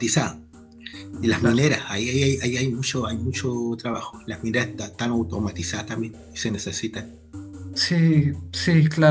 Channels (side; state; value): both; identical; correlation 1.00